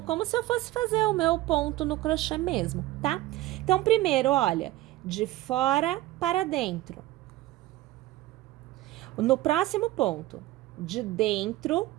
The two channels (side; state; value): left; quieter; 17.0 dB